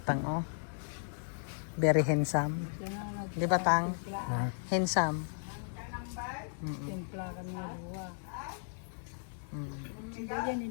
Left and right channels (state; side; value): silent; right; digital silence